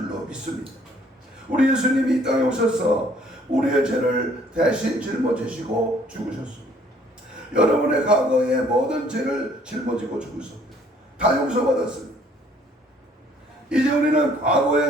믿습니다. 우리 예수님이 이 땅에 오셔서 우리의 죄를 대신 짊어지시고 죽으셨습니다. 여러분의 과거의 모든 죄를 짊어지고 죽으셨습니다. 다 용서받았습니다. 이제 우리는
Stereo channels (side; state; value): both; normal; correlation 0.60